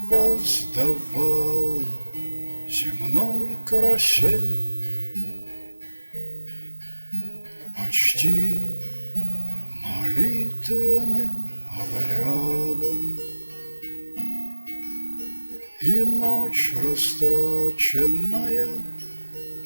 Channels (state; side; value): inverted; both; correlation -1.00